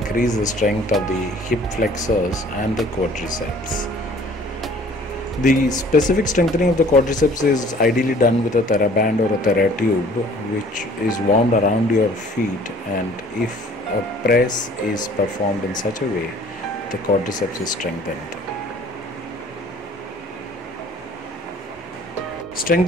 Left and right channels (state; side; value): normal; both; correlation 0.53